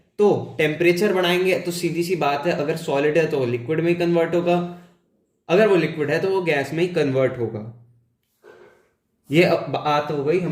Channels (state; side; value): identical; both; correlation 1.00